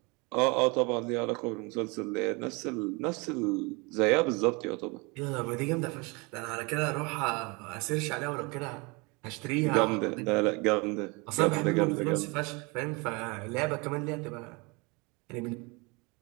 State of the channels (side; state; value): left; quieter; 28.4 dB